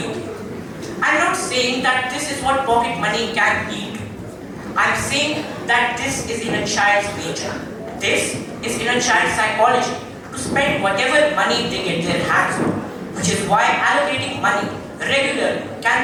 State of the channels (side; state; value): both; identical; correlation 1.00